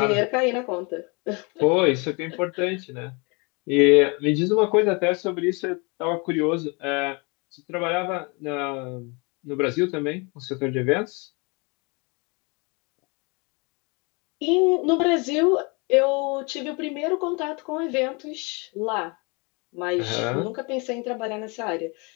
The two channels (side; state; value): right; quieter; 30.5 dB